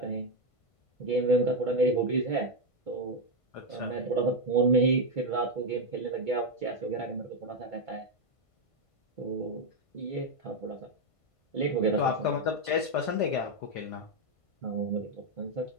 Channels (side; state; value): right; late; 1.5 ms